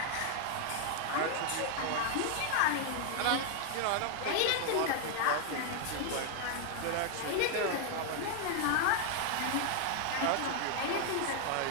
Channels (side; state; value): both; different; correlation 0.00